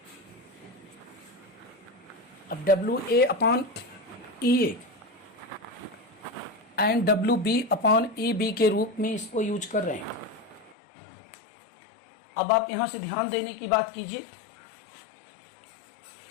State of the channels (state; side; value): drops out; right; at 10.8 s